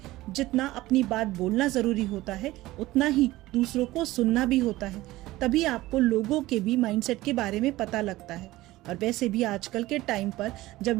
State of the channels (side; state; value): left; quieter; 17.7 dB